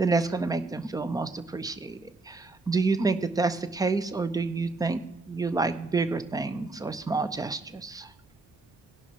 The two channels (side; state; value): left; quieter; 3.5 dB